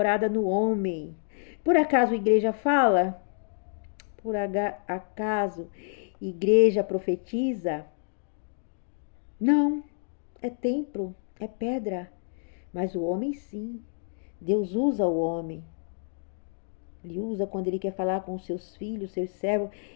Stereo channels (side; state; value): right; silent; digital silence